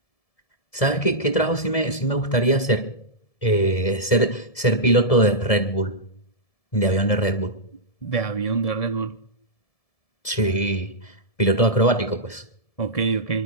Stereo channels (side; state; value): right; late; 1.7 ms